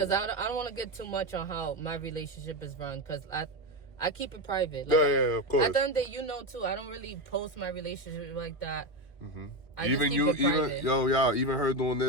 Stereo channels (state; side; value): late; right; 2.6 ms